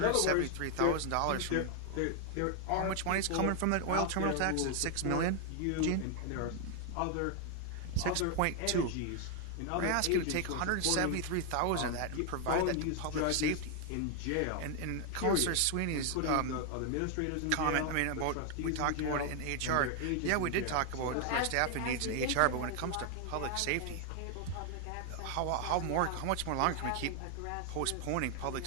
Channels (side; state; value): both; different; correlation 0.00